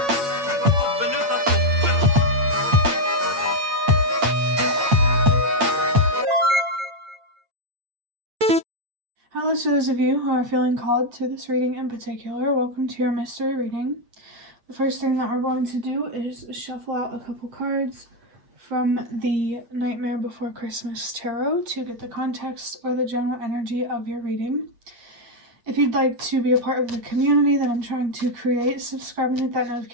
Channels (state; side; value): late; left; 8.8 ms